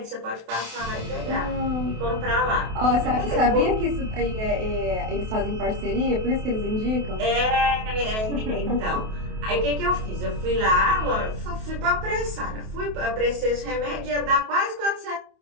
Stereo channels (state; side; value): late; left; 28 ms